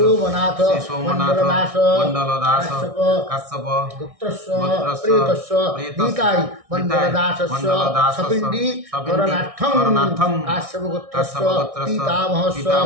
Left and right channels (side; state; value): left; late; 1.6 ms